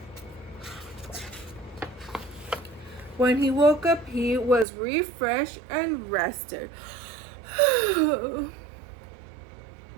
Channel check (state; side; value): drops out; left; at 4.7 s